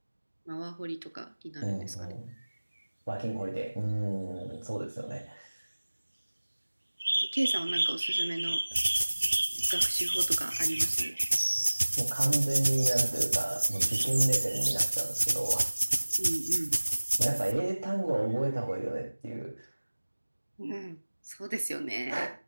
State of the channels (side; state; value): both; inverted; correlation -1.00